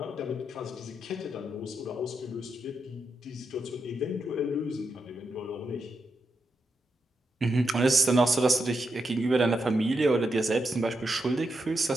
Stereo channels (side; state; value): both; normal; correlation 0.85